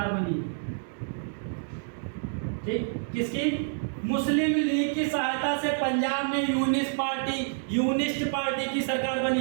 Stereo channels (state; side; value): silent; left; digital silence